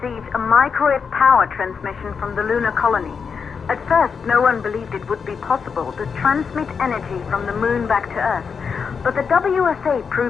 a microwave power transmission from the lunar colony. At first, no one believed it would be possible to transmit energy from the moon back to Earth. But the WSA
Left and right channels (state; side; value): quieter; right; 6.0 dB